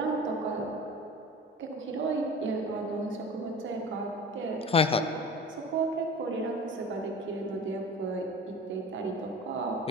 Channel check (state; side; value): normal; both; correlation 0.37